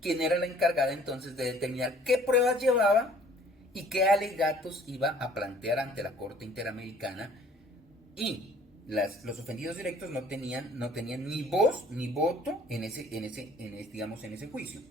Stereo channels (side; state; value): both; normal; correlation 0.54